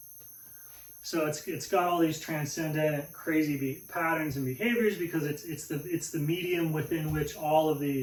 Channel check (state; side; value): identical; both; correlation 1.00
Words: So it's got all these transcendent, crazy patterns and behaviors because it's the medium within which all of